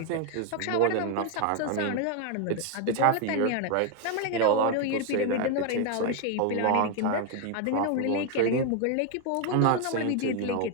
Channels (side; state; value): both; different; correlation 0.01